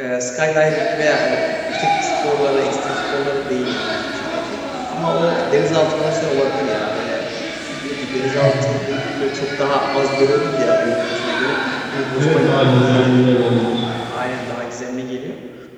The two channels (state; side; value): identical; both; correlation 1.00